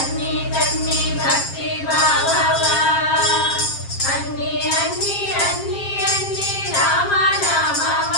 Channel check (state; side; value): late; right; 7.5 ms